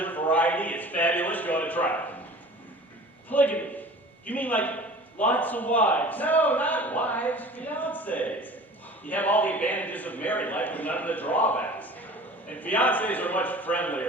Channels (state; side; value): normal; both; correlation 0.42